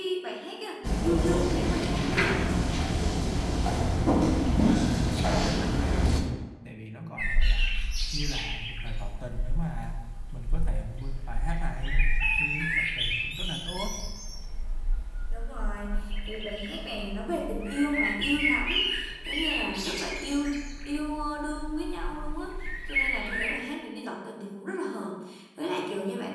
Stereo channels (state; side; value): identical; both; correlation 1.00